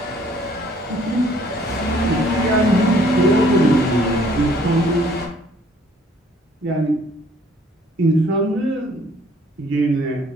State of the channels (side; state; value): both; normal; correlation 0.60